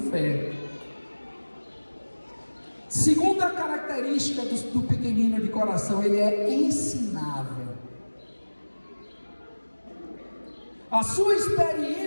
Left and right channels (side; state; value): both; inverted; correlation -1.00